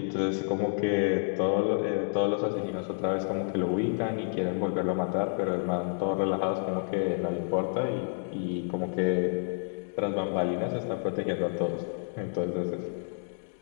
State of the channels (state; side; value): silent; right; digital silence